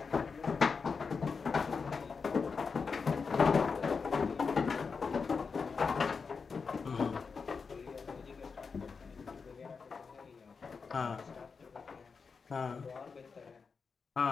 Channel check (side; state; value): right; quieter; 5.2 dB